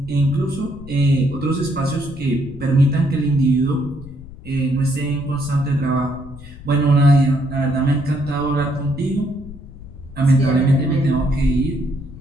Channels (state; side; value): noise; left; rumble, 16 dB below the sound